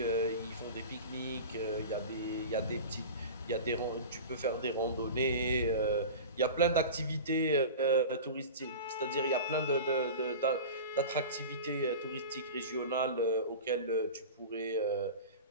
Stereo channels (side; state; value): both; inverted; correlation -0.32